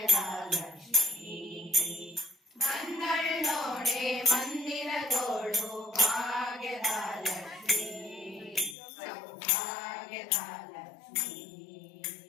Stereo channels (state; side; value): drops out; right; at 8.8 s